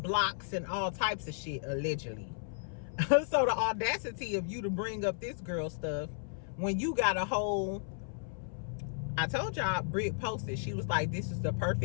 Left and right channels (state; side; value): silent; right; 55 dB below the other